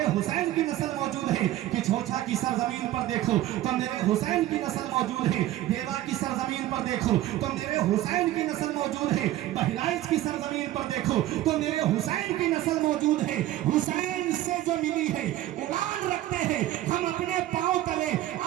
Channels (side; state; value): left; quieter; 14.4 dB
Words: हुसैन की नस्ल मौजूद है। कि छोछा की सरजमीन पर देखो तो मेरे हुसैन की नस्ल मौजूद है। देवा की सरजमीन पर देखो तो मेरे हुसैन की नस्ल मौजूद है। बहराइच की सरजमीन पर देखो तो मेरे हुसैन की नस्ल मौजूद है। हुसैन से जो मिली है उड़ान रखते हैं हम, अपने पांव तले